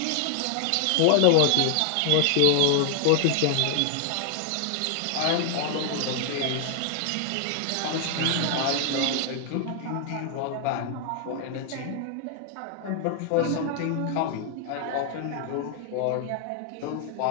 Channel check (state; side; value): different; both; correlation 0.00